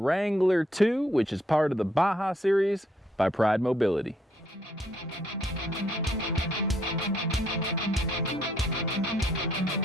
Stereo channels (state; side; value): normal; both; correlation 0.70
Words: 2, which is part of the Baja series by Pride Mobility.